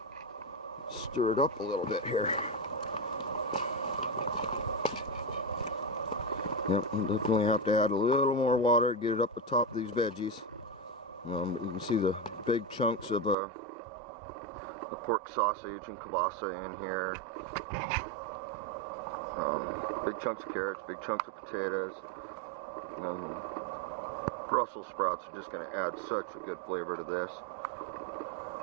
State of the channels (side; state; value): left; drops out; at 13.4 s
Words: Stir it up a little bit here. Yep, definitely have to add a little more water to get it up the top of these veggies. You can see the big chunks of the pork sausage and kielbasa in here. Big chunks of carrots, big chunks of potatoes. Brussels sprouts are just going to add such a good flavor to this.